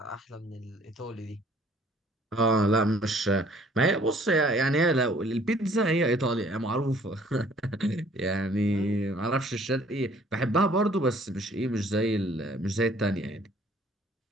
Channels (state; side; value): normal; both; correlation 0.58